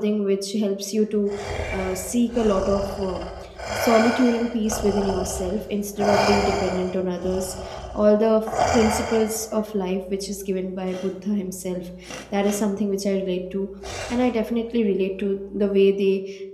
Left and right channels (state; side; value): identical; both; correlation 1.00